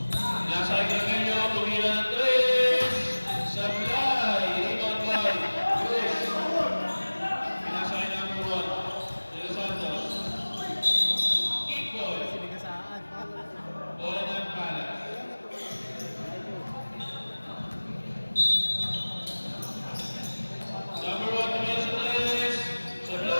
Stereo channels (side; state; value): both; inverted; correlation -1.00